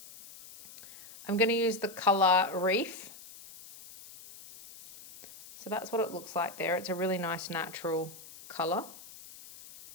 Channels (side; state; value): left; noise; hiss, 18 dB below the sound